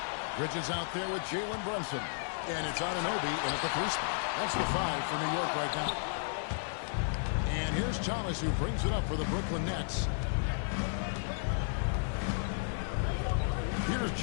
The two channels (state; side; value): silent; right; digital silence